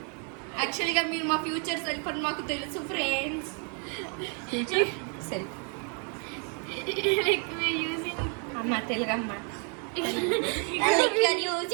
యాక్చువల్గా మీరు మా ఫ్యూచర్ సెల్ఫ్ అని మాకు తెలుసు friends. Future self like we using అమ్మ తెలుగమ్మ లైక్ యు ఆర్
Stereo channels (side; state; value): left; quieter; 39.7 dB